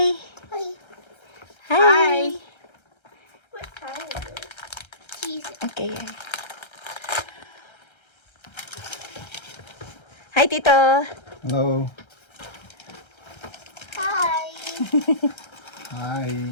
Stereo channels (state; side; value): late; right; 1.3 ms